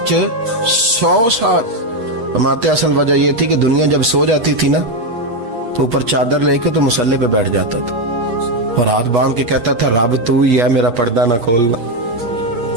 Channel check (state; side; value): late; left; 8.3 ms